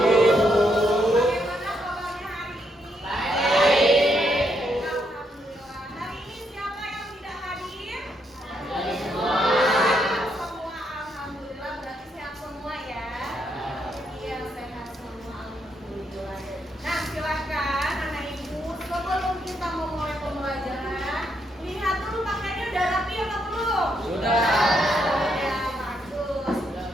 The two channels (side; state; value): both; normal; correlation 0.77